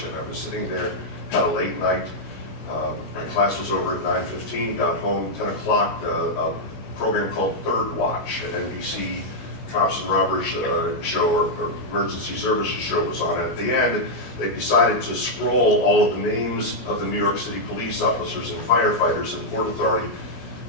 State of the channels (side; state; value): right; late; 17 ms